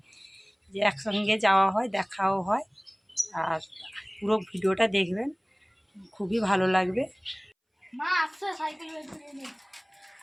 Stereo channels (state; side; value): identical; both; correlation 1.00